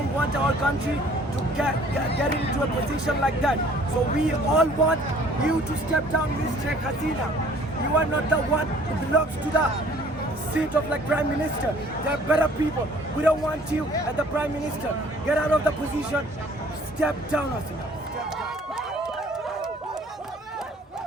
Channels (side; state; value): both; normal; correlation 0.55